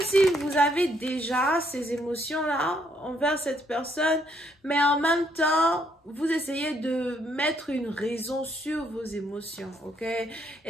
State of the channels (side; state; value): both; normal; correlation 0.71